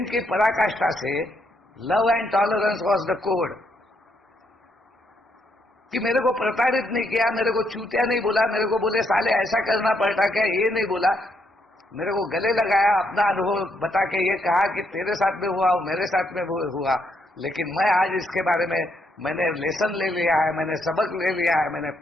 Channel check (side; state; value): both; normal; correlation 0.75